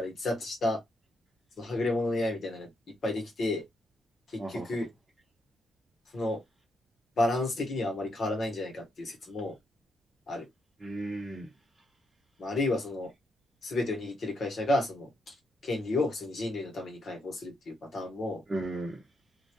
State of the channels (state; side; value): normal; both; correlation 0.79